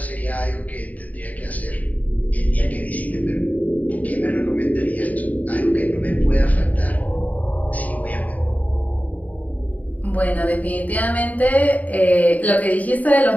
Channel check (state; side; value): late; right; 0.073 ms